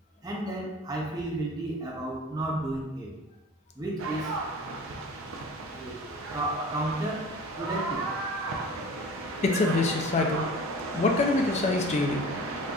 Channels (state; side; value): normal; both; correlation 0.41